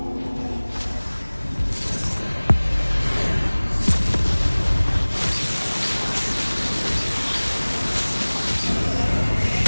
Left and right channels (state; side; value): inverted; both; correlation -1.00